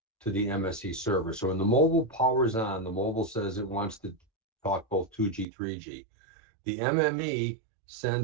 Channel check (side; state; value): left; drops out; at 5.5 s